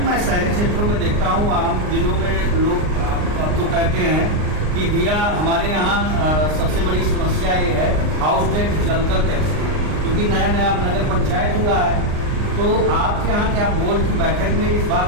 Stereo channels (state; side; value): late; left; 39 ms